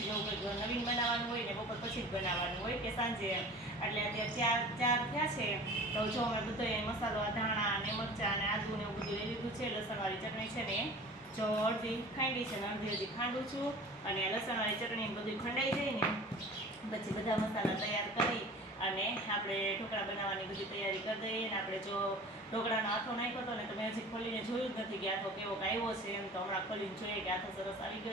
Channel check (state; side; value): normal; both; correlation 0.41